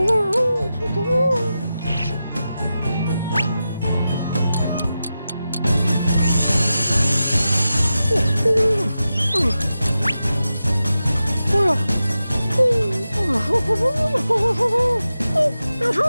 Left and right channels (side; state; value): both; inverted; correlation -0.91